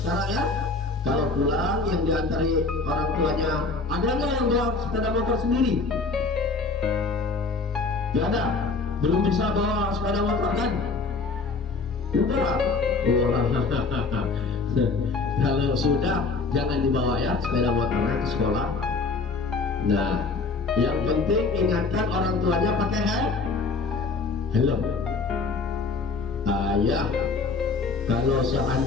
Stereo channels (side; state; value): right; quieter; 4.1 dB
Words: ya. Kalau pulang yang diantari orang tuanya, ada nggak yang bawa sepeda motor sendiri? Gak ada. Belum bisa bawa sepeda motor kan? Udah. Wah. Kalau sudah jangan dibawa ya sepeda motornya ke sekolah. Nah, yang penting ingatkan orang tuanya pakai helm. Ayah, kalau